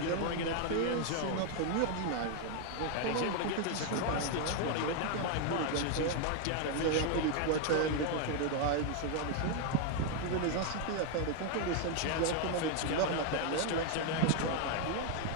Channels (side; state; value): both; different; correlation 0.01